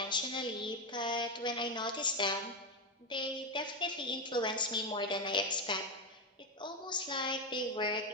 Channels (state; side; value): normal; both; correlation 0.10